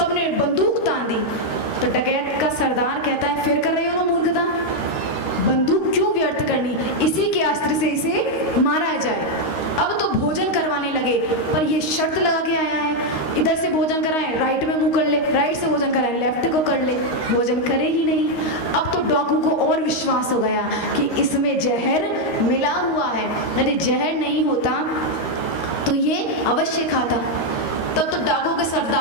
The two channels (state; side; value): late; right; 13 ms